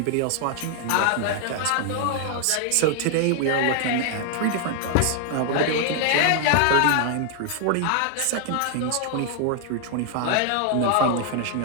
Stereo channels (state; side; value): different; both; correlation 0.00